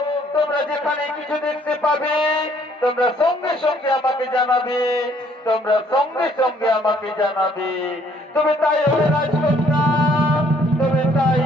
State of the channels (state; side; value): normal; both; correlation 0.64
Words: তোমরা যেখানে কিছু দেখতে পাবে তোমরা সঙ্গে সঙ্গে আমাকে জানাবে, তোমরা সঙ্গে সঙ্গে আমাকে জানাবে। তুমি তাই হবে রাজকন্যা, তুমি তাই